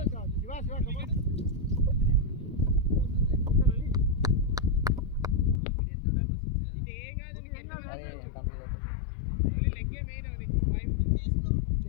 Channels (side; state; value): right; drops out; at 5.6 s